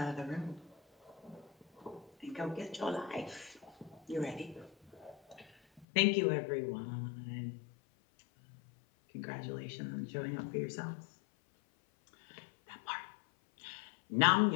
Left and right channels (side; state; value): right; drops out; at 5.9 s